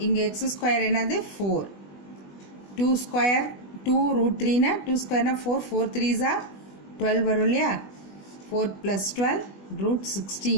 இங்கே x square என்னது 4, 2 square 2 root 3 னா 2 square னா 4, 4 3s are 12 வரும் இல்லையா, 4 plus 12 root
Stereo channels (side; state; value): right; late; 20 ms